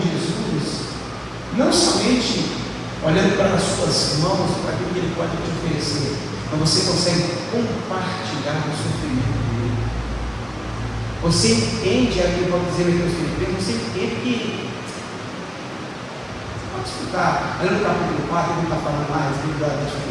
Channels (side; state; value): both; identical; correlation 1.00